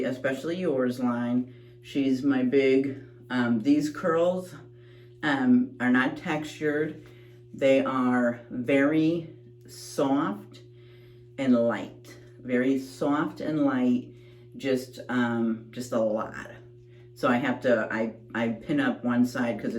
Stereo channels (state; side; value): identical; both; correlation 1.00